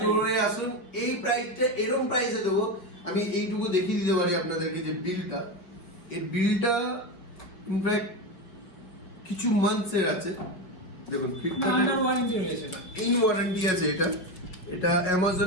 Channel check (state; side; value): late; right; 5.6 ms